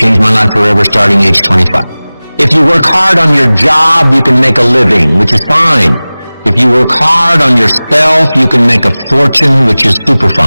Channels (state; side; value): inverted; both; correlation -0.99